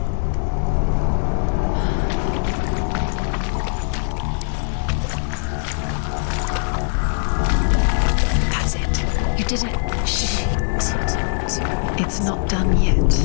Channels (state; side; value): silent; right; digital silence